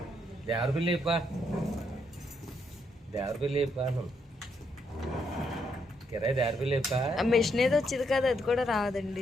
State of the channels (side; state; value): both; normal; correlation 0.76